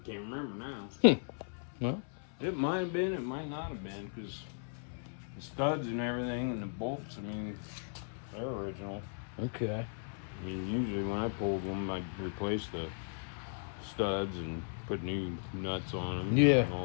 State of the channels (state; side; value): silent; right; 54 dB below the other